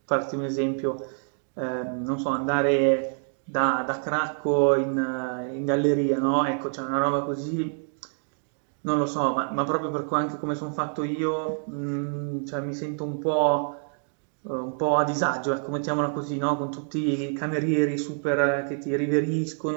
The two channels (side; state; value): left; silent; 60 dB below the other